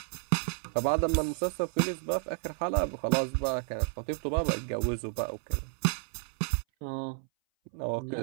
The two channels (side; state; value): left; silent; 57 dB below the other